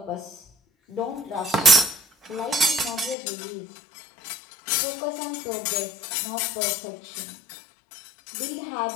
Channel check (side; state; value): right; drops out; at 3.2 s